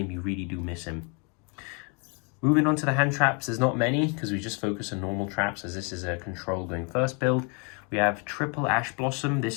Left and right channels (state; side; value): quieter; right; 34.6 dB